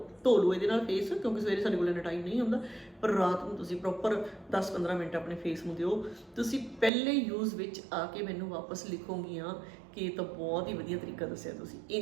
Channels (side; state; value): left; drops out; at 6.9 s